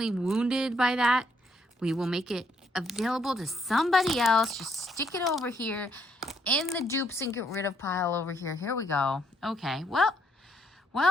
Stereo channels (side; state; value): both; normal; correlation 0.71